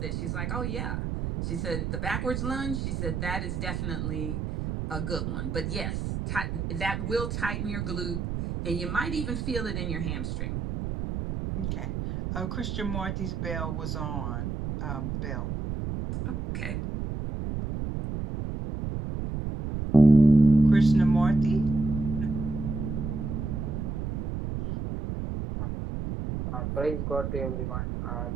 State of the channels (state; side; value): noise; right; rumble, 3 dB below the sound